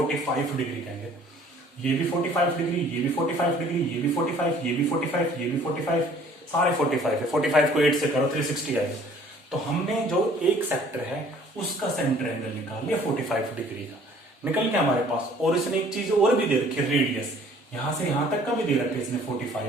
डिग्री का है। ये भी 45 डिग्री, ये भी 45 डिग्री, ये भी 45, ये भी 45, ये भी 45, सारे 45 है। 45 को 8 से करो 360 आएगा। तो हमने जो एक सेक्टर है उसका सेंटर एंगल निकाल लिया 45 डिग्री का, निकल गया हमारे पास। और इसने एक चीज और भी दे रखी है, रेडियस। यहां से यहां तक का भी दे रखा है इसने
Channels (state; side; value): normal; both; correlation 0.55